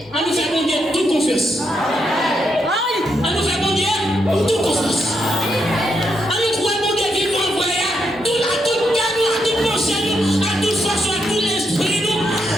On nous fait bon Dieu toute confiance. On nous fait bon Dieu toute confiance. On nous croit bon Dieu qui va envoyer à toute cadeau, à toute pensée, à toute façon, à tout l'esprit.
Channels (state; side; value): normal; both; correlation 0.81